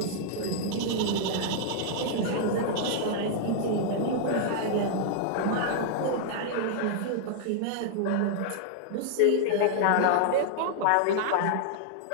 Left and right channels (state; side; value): different; both; correlation -0.01